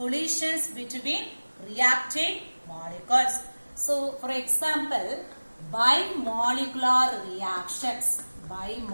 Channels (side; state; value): both; inverted; correlation -1.00